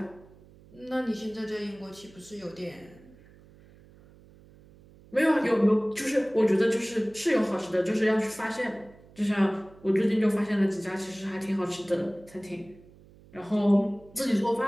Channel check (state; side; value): noise; right; hum, 24 dB below the sound